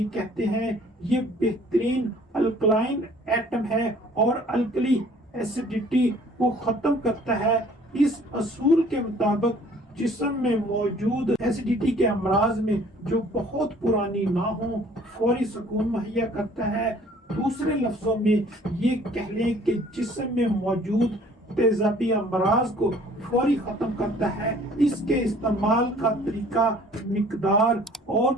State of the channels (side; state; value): both; normal; correlation 0.54